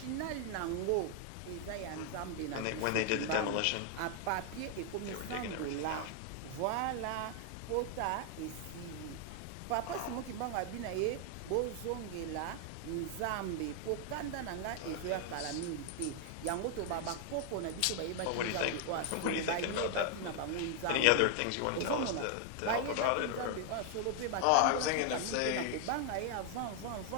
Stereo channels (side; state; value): both; different; correlation 0.00